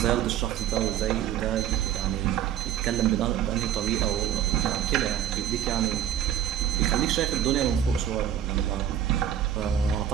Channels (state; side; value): quieter; left; 10.4 dB